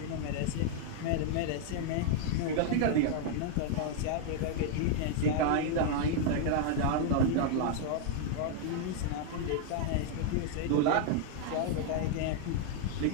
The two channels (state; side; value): different; both; correlation 0.00